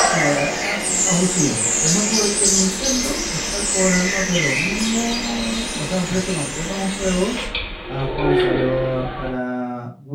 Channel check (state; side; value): identical; both; correlation 1.00